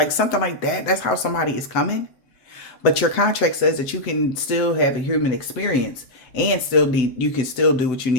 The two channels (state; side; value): late; right; 7.9 ms